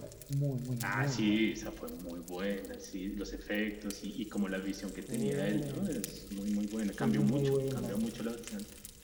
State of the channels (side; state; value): both; identical; correlation 1.00